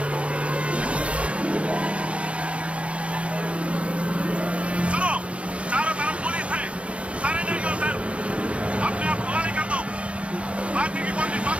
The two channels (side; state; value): left; late; 0.061 ms